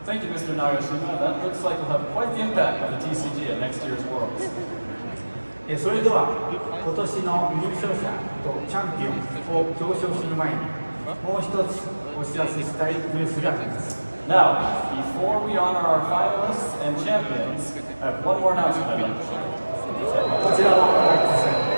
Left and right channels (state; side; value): inverted; both; correlation -1.00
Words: Thank you, Mr. Nagashima. That looks like we'll have quite the impact on the TCG at next year's Worlds. それでは今年の優勝者とチャンピオンを表彰する前にもう一つお知らせしたいニュースがあります。 Now, before we honor our finalists and champions, I have one more announcement I'd like to share. こちらをご覧ください。